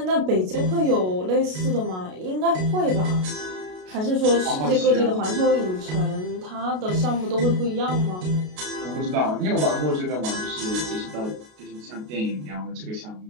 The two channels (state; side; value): late; left; 33 ms